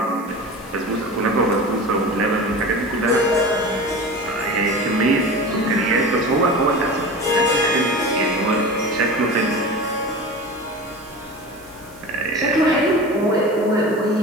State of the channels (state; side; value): noise; right; hiss, 24 dB below the sound